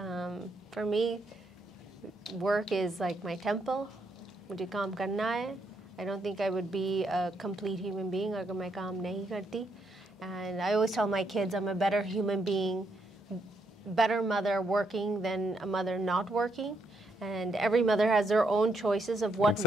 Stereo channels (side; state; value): both; normal; correlation 0.76